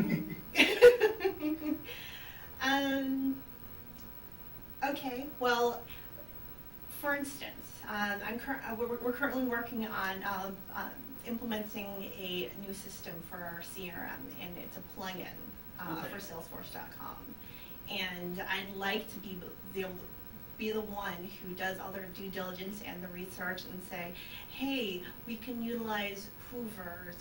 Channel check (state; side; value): noise; right; rumble, 14 dB below the sound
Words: Okay, well, for instance, we're currently working on implementing a new system for our CRM, and it's a plugin for Salesforce.com. And I'd like to be able to be the one who does all their due diligence and the research and say, hey, we can utilize